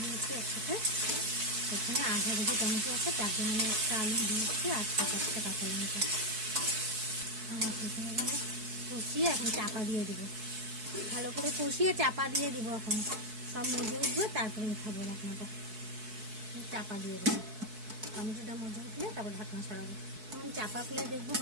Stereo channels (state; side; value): late; left; 4.6 ms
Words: দিয়েছি একসাথে। এখানে আধা কেজি টমেটো আছে, তার জন্য আমি একটা আলু দিয়েছি আর 7-8টা কাঁচা লঙ্কা। আমার কষিয়ে এখন চাপা দিয়ে দেবো। ভালো করে কষিয়ে চাপা দিয়ে দেবো। এখন সব মজে উঠবে, তারপরে উঠাবো ঢাকনাটা। চাপা দিয়ে দেবো। টমেটোটা মজে উঠলে তারপর ঢাকনা সরাবো। এখন চাপা খুলে দেখবো